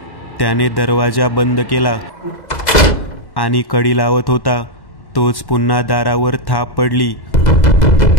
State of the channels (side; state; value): right; late; 2.0 ms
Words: त्याने दरवाजा बंद केला आणि कडी लावत होता तोच पुन्हा दारावर थाप पडली.